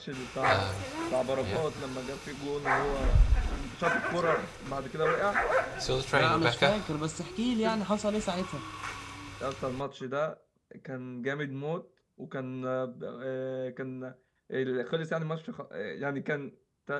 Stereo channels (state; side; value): identical; both; correlation 1.00